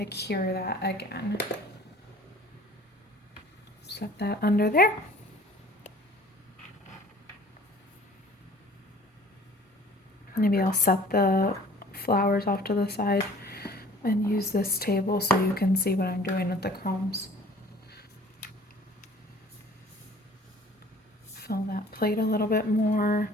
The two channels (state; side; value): normal; both; correlation 0.50